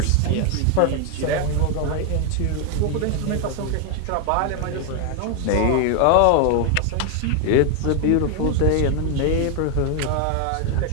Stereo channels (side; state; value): both; different; correlation 0.00